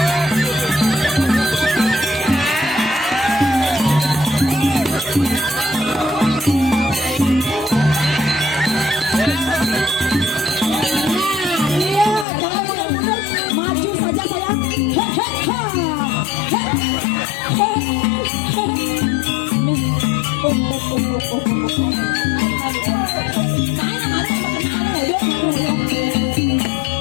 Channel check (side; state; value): right; drops out; at 12.2 s